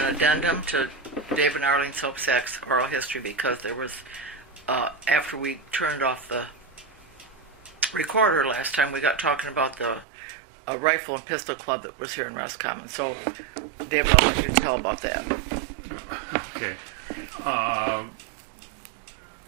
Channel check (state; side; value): drops out; left; at 10.1 s